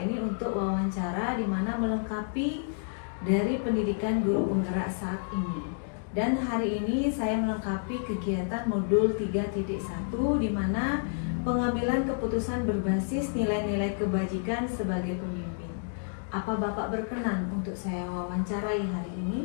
ini untuk wawancara di mana melengkapi dari pendidikan guru penggerak saat ini. Dan hari ini saya melengkapi kegiatan modul 3.1 di mana pengambilan keputusan berbasis nilai-nilai kebajikan sebagai pemimpin. Apa Bapak berkenan untuk saya wawancarai hari ini?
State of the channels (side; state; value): right; silent; digital silence